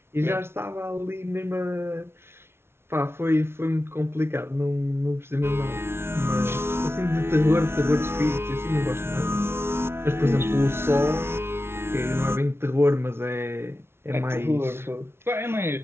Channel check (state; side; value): late; left; 0.12 ms